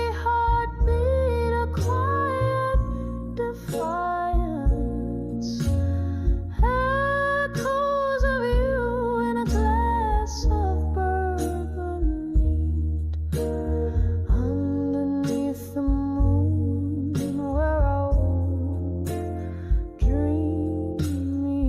heartbeat a quiet defiance, echoes of you in a glass of bourbon neat. Underneath the moon where our dreams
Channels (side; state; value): both; identical; correlation 1.00